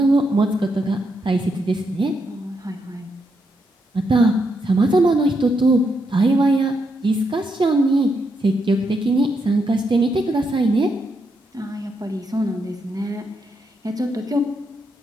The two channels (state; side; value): normal; both; correlation 0.80